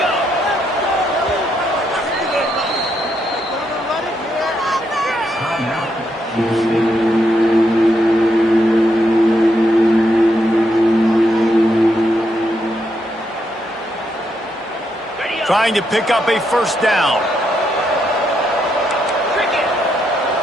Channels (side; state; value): both; normal; correlation 0.79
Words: Trying to pick up a 1st down.